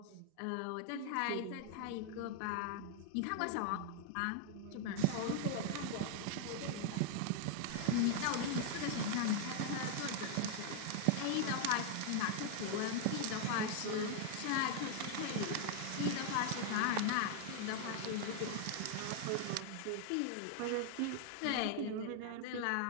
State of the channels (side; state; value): both; different; correlation 0.00